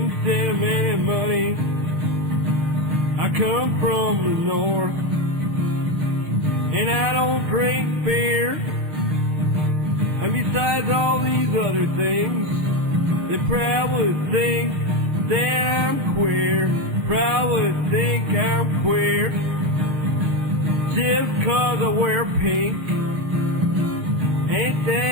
send them any money. I come from the north, and I don't drink beer. And besides all these other things, they probably think that I'm queer, probably think I'm queer, just 'cause I wear pink. Ain't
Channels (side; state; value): left; late; 6.6 ms